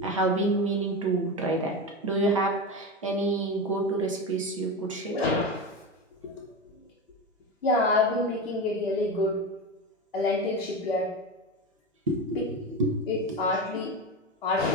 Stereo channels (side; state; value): both; normal; correlation 0.21